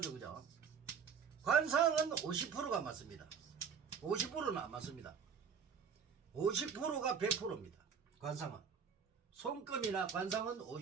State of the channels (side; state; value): left; quieter; 6.7 dB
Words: 그죠? 관상은 50%가 맞습니다. 50%는 안 맞습니다. 50%가 100%입니다. 관상은 손금이나 관상은